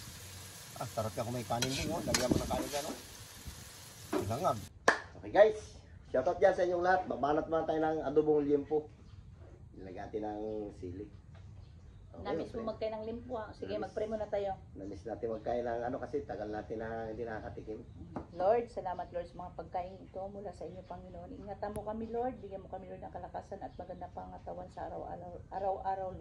Sarap ka kung may kanin din. Lagyan mo ng kanin dyan. Silangag. Okay guys. Shoutout dyan sa inyong lahat. Babanat muna tayo ng adobong liempo. Nilagyan natin ng sili. Okay, Namiss mo magkain ng limpo ah. Sige, mag-pray muna tayo. Namiss natin magkain ng kasi tagal natin na hindi nakakatikim. Lord, salamat Lord sa mga pagkain ito mula sa inyo, Panginoon. Ingatan mo kami, Lord. Bigyan mo kami, Lord, ng kalakasan at magandang pangatawan sa araw-araw,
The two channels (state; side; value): identical; both; correlation 1.00